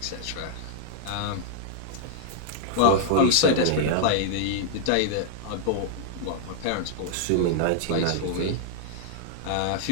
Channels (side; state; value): both; different; correlation -0.01